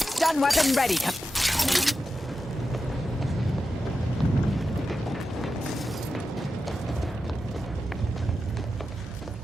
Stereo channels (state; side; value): normal; both; correlation 0.91